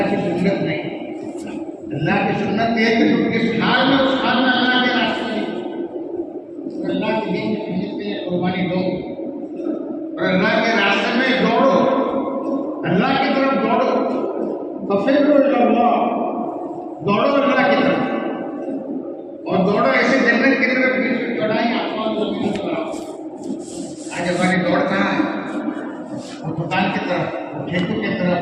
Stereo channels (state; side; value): identical; both; correlation 1.00